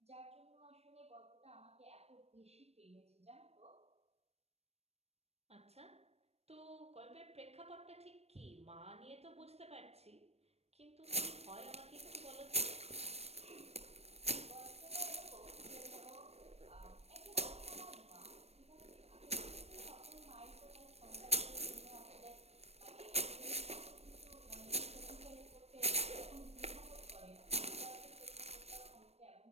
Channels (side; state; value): left; late; 0.31 ms